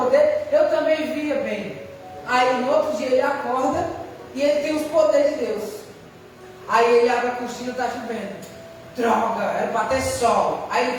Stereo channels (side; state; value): both; identical; correlation 1.00